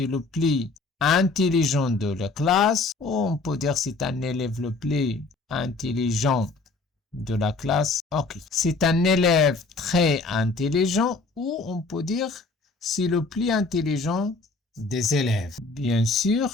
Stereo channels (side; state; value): right; quieter; 3.6 dB